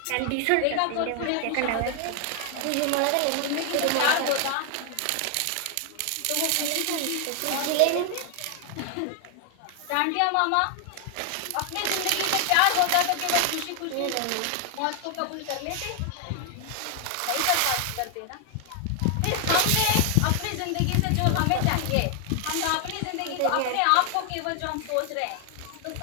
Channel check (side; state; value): both; different; correlation 0.00